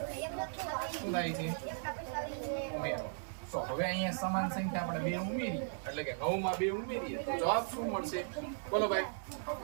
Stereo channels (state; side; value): silent; left; digital silence